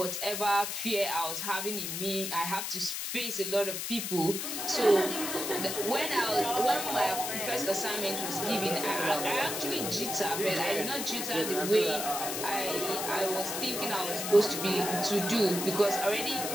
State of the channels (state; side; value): noise; left; hiss, 4 dB below the sound